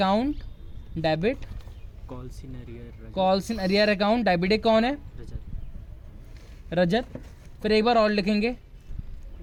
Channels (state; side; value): identical; both; correlation 1.00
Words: debit, calls in arrear account debit. एक कौन है? रजत। फिर एक बार और लिखेंगे